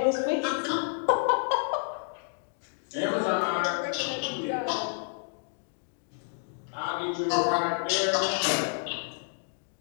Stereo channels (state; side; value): silent; right; 58 dB below the other